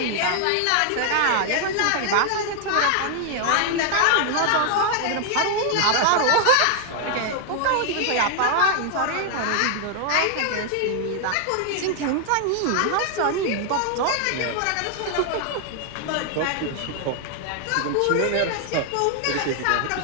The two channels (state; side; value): different; both; correlation 0.00